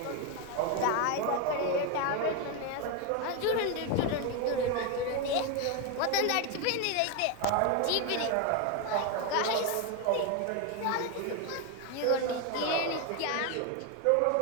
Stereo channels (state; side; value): different; both; correlation 0.02